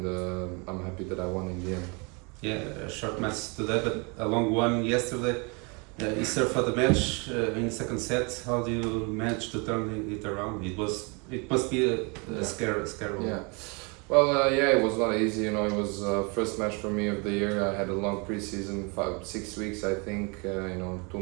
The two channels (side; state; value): left; quieter; 31.6 dB